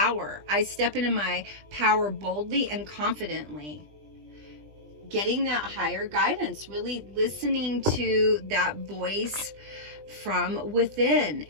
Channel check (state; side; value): late; left; 20 ms